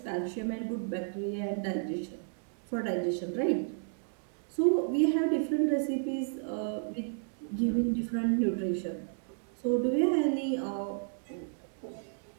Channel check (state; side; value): silent; left; digital silence